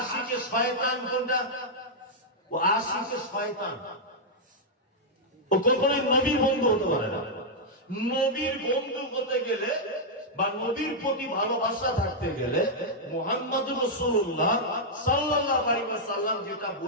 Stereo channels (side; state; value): both; normal; correlation -0.05